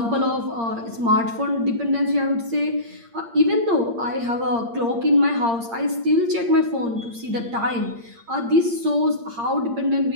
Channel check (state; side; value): late; left; 8.7 ms